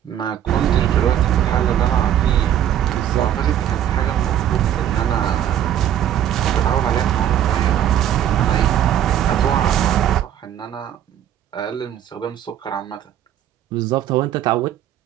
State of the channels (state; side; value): quieter; left; 10.7 dB